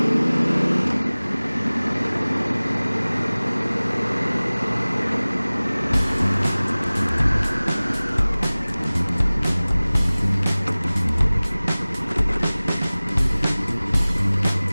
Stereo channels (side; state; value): both; inverted; correlation -0.99